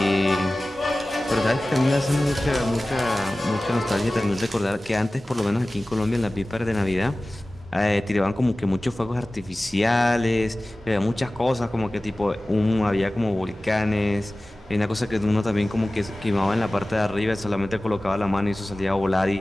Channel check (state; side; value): normal; both; correlation 0.97